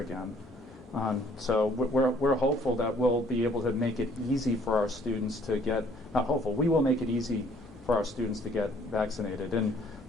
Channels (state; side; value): normal; both; correlation 0.60